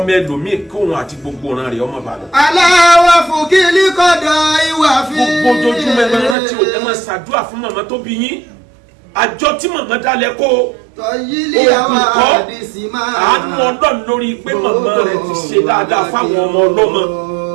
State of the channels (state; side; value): drops out; left; at 6.4 s